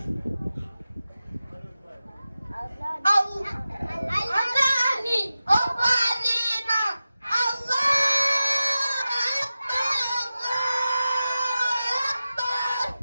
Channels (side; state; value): both; inverted; correlation -0.94